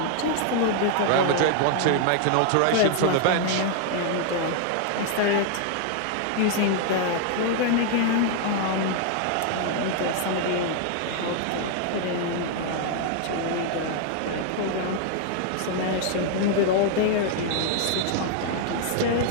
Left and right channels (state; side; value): different; both; correlation 0.00